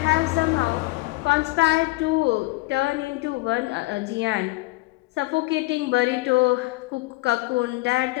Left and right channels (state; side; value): quieter; right; 21.9 dB